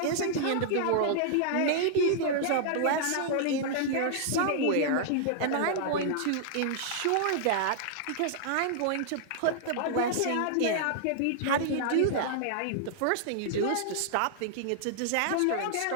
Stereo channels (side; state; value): both; different; correlation -0.01